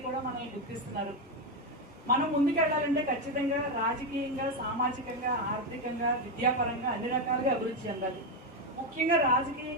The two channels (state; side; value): normal; both; correlation 0.08